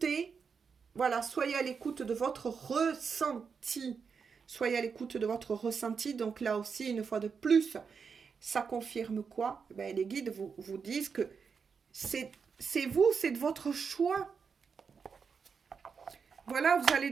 voilà, soyez à l'écoute de votre ressenti. Soyez à l'écoute de votre ressenti. Donc là aussi, une fois de plus, ça confirme quoi? Les guides vous disent que c'est vous, c'est de votre choix. Voilà, vous allez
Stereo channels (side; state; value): left; quieter; 5.9 dB